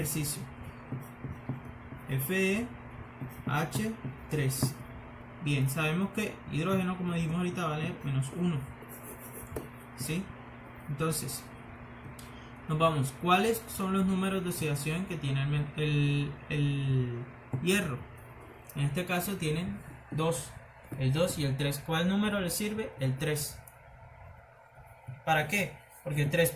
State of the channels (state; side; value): identical; both; correlation 1.00